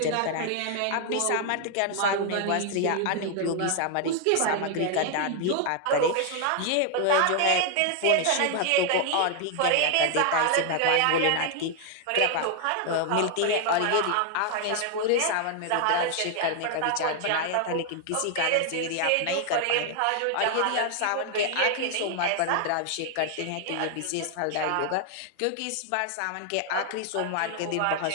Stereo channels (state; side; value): different; both; correlation 0.00